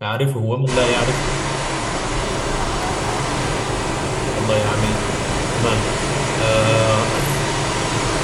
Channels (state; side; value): identical; both; correlation 1.00